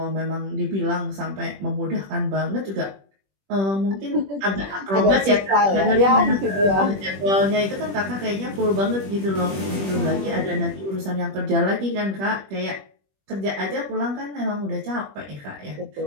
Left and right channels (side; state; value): left; late; 21 ms